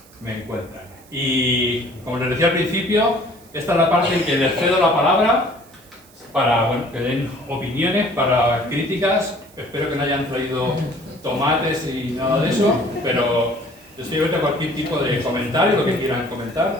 me encuentran. Y como les decía al principio, esta es la parte en que les cedo la palabra para que den opiniones, para críticas. Espero que no hayan traído tomates y nada de eso, pero estoy abierto a cualquier tipo de comentario, lo que quieran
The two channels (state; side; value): noise; right; hiss, 26 dB below the sound